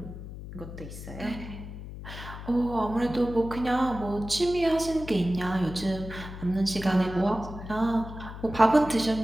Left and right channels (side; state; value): left; noise; hum, 11 dB below the sound